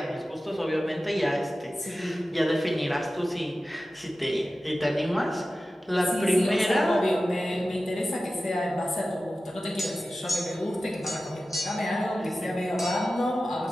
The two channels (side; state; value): both; normal; correlation 0.94